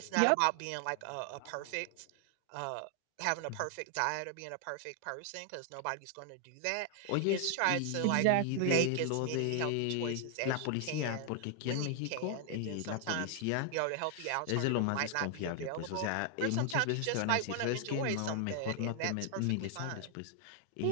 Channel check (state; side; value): different; both; correlation 0.00